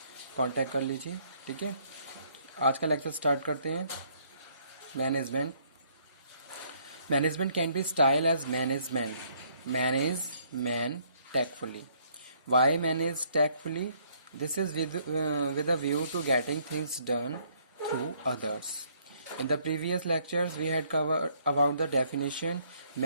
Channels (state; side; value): inverted; both; correlation -0.66